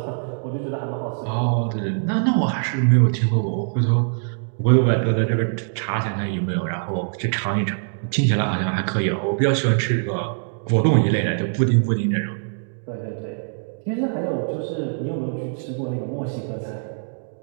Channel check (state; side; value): silent; left; digital silence